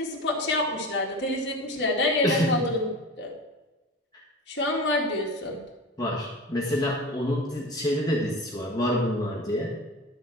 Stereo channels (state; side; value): normal; both; correlation 0.32